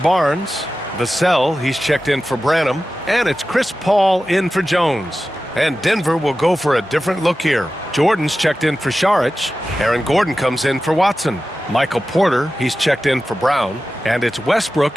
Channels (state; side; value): normal; both; correlation 0.94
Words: Vassell, he's checked in for Branham. And it's Chris Paul in for Jones. And Denver will go for a different look here. Jordan's checked in for Saric. Aaron Gordon comes in for Watson. Michael Porter, he's checked in for Brown. And it's